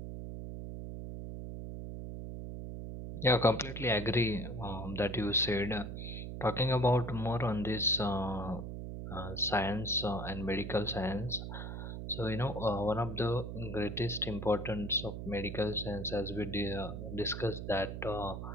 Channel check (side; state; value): right; noise; hum, 6 dB below the sound